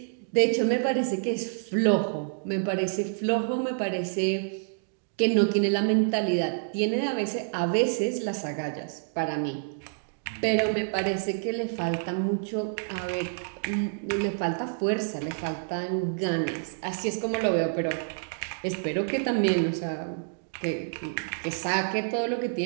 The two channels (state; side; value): silent; left; digital silence